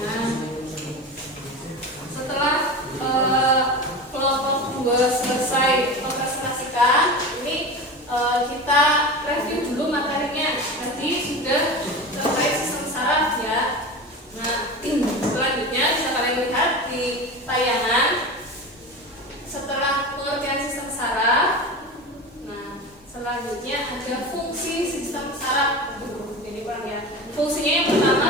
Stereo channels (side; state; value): both; normal; correlation 0.28